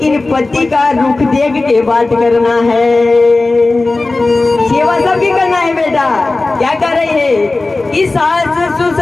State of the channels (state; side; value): quieter; right; 3.3 dB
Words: पति का रुख देख के बात करना है। सेवा सबकी करना है बेटा। क्या कर रही है कि सास